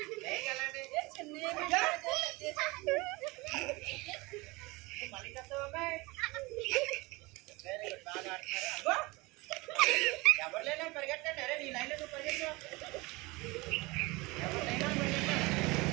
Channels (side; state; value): left; quieter; 23.7 dB